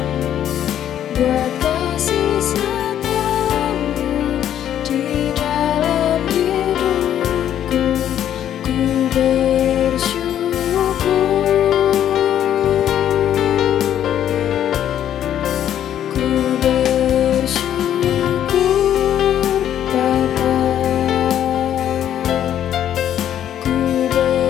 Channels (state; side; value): quieter; right; 10.6 dB